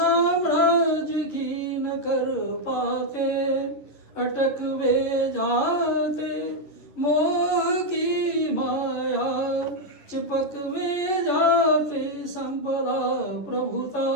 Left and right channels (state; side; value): late; right; 11 ms